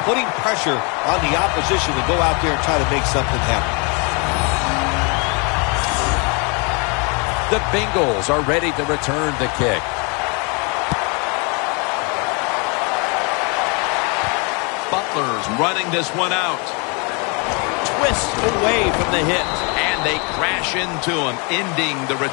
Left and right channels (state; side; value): quieter; right; 33.1 dB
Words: putting pressure on the opposition to go out there and try to make something happen. The Bengals are ready to return the kick. Butler's running this one out. Twists away from the hit, and they crash into him, ending the